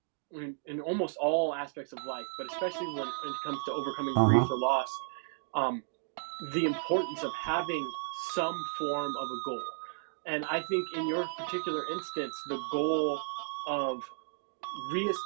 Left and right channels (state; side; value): silent; left; digital silence